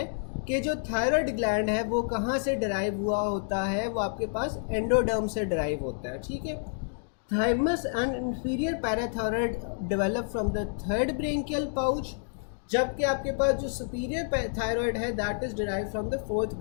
कि जो थायराइड ग्लैंड है वो कहाँ से डिराइव हुआ होता है, वो आपके पास एंडोडर्म से डिराइव होता है, ठीक है। Thymus and inferior parathyroid develop from the third branchial pouch, जबकि आपके पास जो सुपीरियर थायराइड है that is derive from the fourth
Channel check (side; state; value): right; silent; digital silence